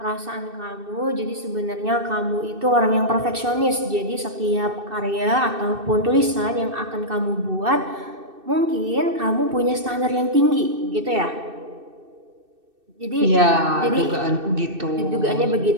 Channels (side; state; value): left; late; 2.6 ms